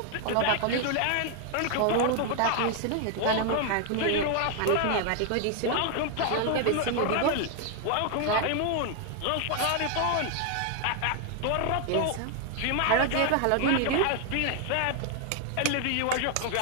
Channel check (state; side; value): different; both; correlation 0.00